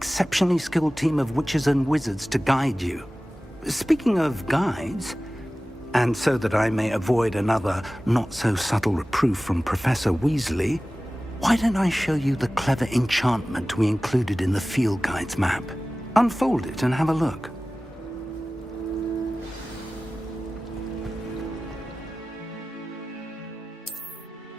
skilled team of witches and wizards to guide you. Speaking of guides, and so that I may avoid another not-so-subtle reproof from Professor Weasley, why don't I show you the clever enchantment we included in the field guide's map? Unfold it and have a look.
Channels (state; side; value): normal; both; correlation 0.97